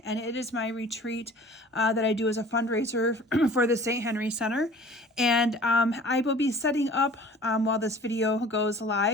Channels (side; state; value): both; normal; correlation 0.46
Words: and it is my retreat that I do as a fundraiser for the St. Henry Center. And I will be setting up while this video goes